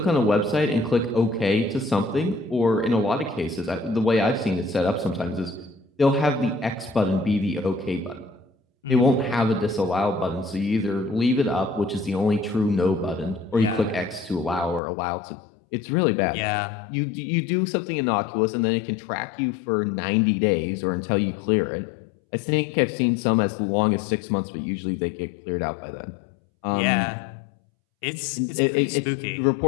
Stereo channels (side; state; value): right; drops out; at 14.8 s